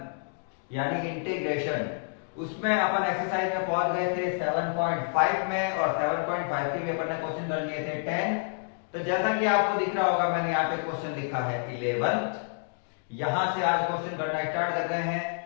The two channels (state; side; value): silent; right; digital silence